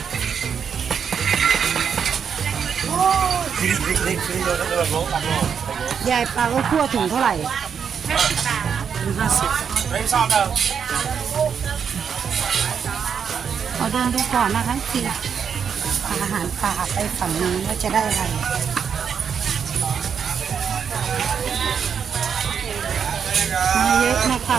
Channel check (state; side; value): quieter; left; 7.1 dB